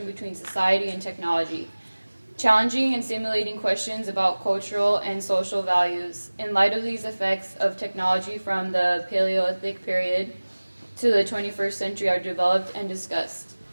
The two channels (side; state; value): both; inverted; correlation -1.00